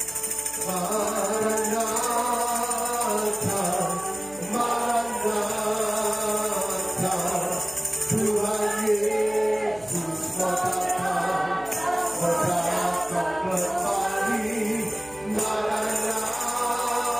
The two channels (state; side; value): noise; right; hum, 23 dB below the sound